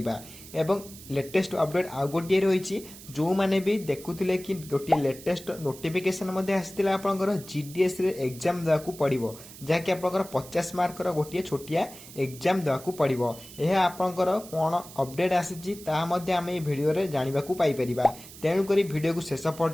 एवं लेटेस्ट अपडेट आ गोटिए रहिछि जो मैंने भी देखुथिले कि गोटिए लेटेस्ट नोटिफिकेशन मध्ये आसीतिला आपनकर जीडीएस रे एग्जाम दाकू पड़िबो जा कि आपनकर 50 मार्क रो गोटिए छोटिया एग्जाम दाकू पड़िबो। एहा आपनकर कोन अपडेट आसीछि ता मध्ये आमे ए वीडियो रे जानिबा को पाई परिबा। तेणुक भिडियो को शेष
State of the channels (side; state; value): right; noise; hiss, 17 dB below the sound